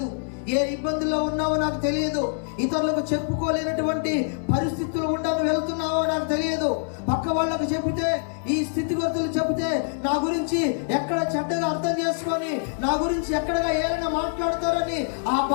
ఏ ఇబ్బందుల్లో ఉన్నావో నాకు తెలియదు, ఇతరులకు చెప్పుకోలేనటువంటి పరిస్థితులు ఉండాలని వెళ్తున్నావో నాకు తెలియదు. పక్క వాళ్ళకు చెబితే, ఈ స్థితిగతులు చెబితే నా గురించి ఎక్కడ చెడ్డగా అర్థం చేసుకొని, నా గురించి ఎక్కడగా ఏమైనా మాట్లాడతారని ఆ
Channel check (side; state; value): right; silent; 62 dB below the other